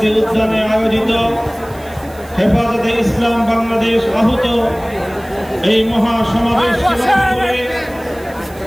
উদ্যানে আয়োজিত হেফাজতে ইসলাম বাংলাদেশ আহত এই মহাসমাবেশ করে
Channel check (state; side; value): noise; right; hiss, 24 dB below the sound